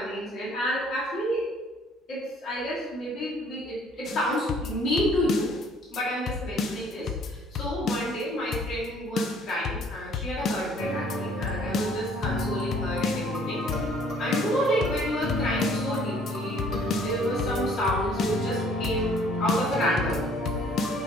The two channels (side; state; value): both; normal; correlation 0.58